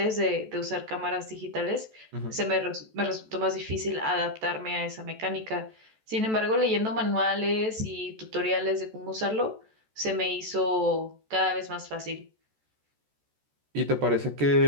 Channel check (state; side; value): late; left; 14 ms